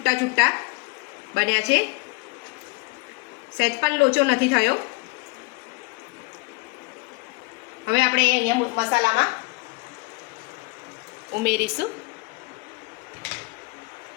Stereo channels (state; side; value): quieter; right; 26.8 dB